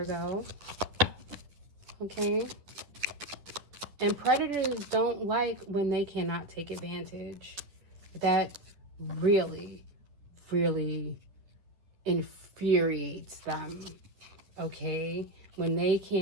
Okay? And predators don't like when they cannot take advantage. That really, really infuriates them, okay? When they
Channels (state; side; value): late; left; 10 ms